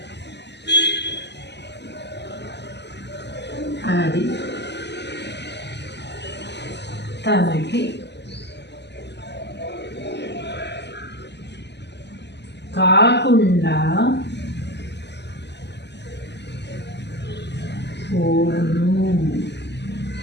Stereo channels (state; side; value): late; right; 0.50 ms